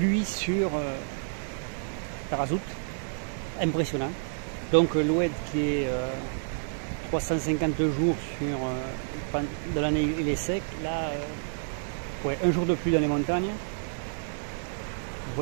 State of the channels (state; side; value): silent; left; digital silence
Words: sur Tarazout, impressionnant. Donc l'OED qui est 350 jours sur de l'année, il est sec. Là, ouais, un jour de pluie dans les montagnes. Vous